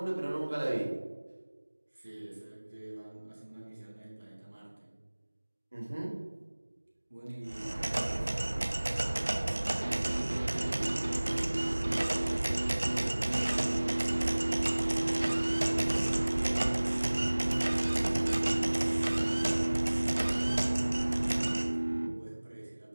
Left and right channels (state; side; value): inverted; both; correlation -1.00